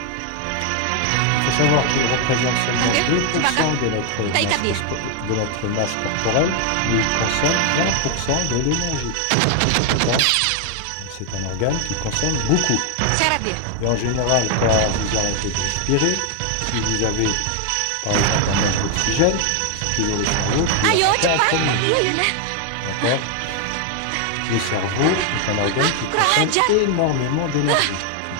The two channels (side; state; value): both; different; correlation 0.00